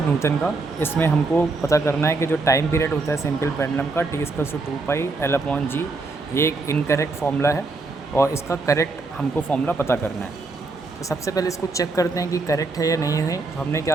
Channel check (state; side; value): quieter; left; 3.6 dB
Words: का। इसमें हमको पता करना है कि जो टाइम पीरियड होता है सिंपल पेंडुलम का T=2πL/g, ये एक इनकरेक्ट फॉर्मूला है और इसका करेक्ट हमको फॉर्मूला पता करना है। तो सबसे पहले इसको चेक करते हैं कि करेक्ट है या नहीं है। तो हमने